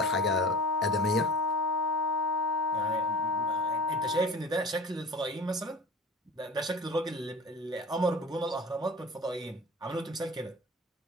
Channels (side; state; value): both; normal; correlation 0.40